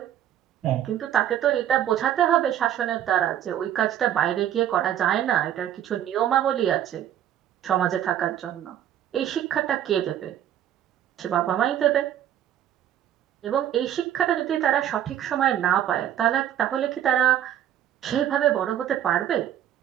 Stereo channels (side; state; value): left; quieter; 10.9 dB